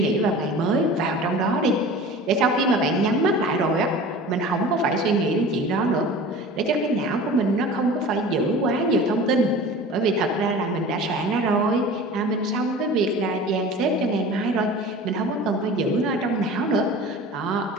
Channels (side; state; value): both; normal; correlation 0.38